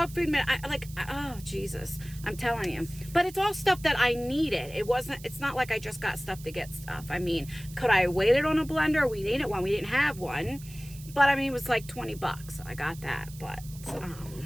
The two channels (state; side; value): noise; right; hiss, 18 dB below the sound